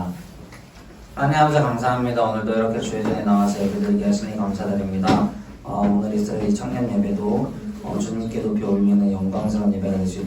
하나님 아버지 감사합니다. 오늘도 이렇게 주의 전에 나와서 예배드리게 하시니 감사드립니다. 오늘 이스라엘 청년 예배도 주님께 높이 올리는 영광스러운 예배가 될 수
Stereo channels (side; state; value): both; identical; correlation 1.00